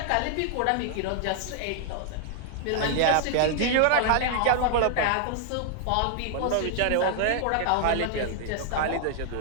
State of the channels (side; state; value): both; different; correlation 0.00